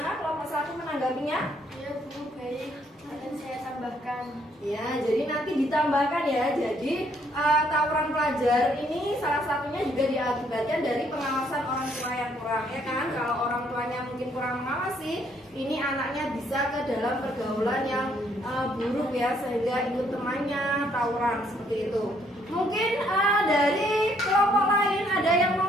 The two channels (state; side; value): normal; both; correlation 0.68